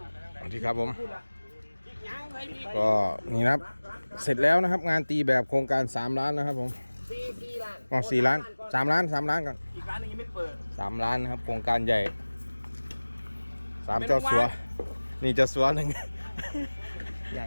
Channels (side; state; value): both; inverted; correlation -1.00